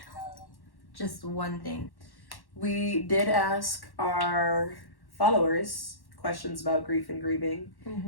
thing. We did ask our followers questions about grief and grieving,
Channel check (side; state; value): right; late; 1.1 ms